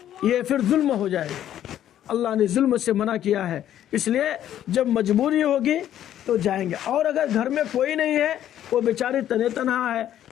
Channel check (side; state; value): right; quieter; 11.3 dB